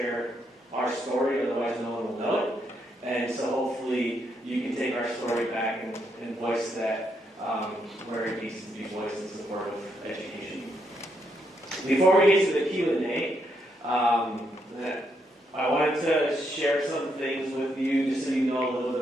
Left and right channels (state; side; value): normal; both; correlation 0.78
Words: our story, otherwise no one will know it. And so hopefully you can take our story back and voice that where it needs to be voiced in support of education. Before we get to the Q&A, I wanted to share some things with you just so you know a little